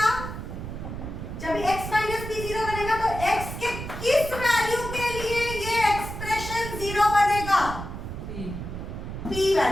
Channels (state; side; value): noise; right; rumble, 7 dB below the sound